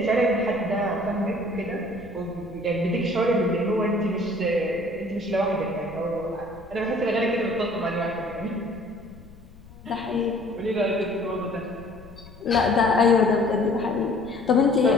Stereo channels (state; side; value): noise; left; rumble, 21 dB below the sound